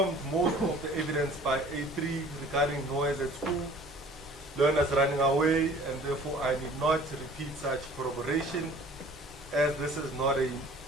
most of the evidence by A3 regarding noise at school, learners running away, and therefore I need not repeat such corroboration as this is not a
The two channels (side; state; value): both; normal; correlation 0.50